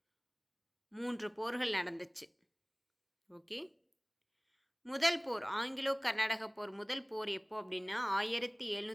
3 போர்கள் நடந்துச்சு. ஓகே, முதல் போர் ஆங்கிலோ கர்நாடக போர் முதல் போர் எப்போ அப்படின்னா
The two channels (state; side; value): identical; both; correlation 1.00